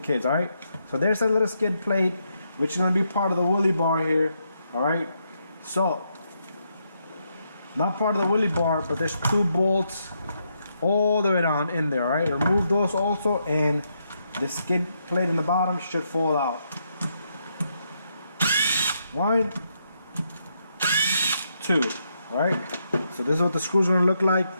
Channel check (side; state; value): both; inverted; correlation -0.79